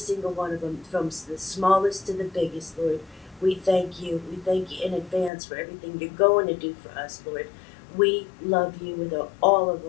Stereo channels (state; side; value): drops out; right; at 5.3 s